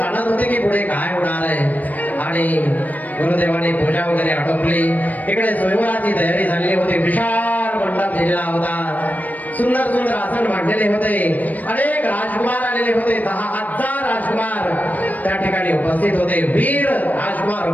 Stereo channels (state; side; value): late; right; 0.079 ms